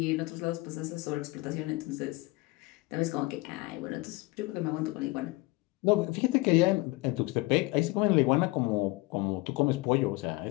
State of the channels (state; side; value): quieter; right; 22.5 dB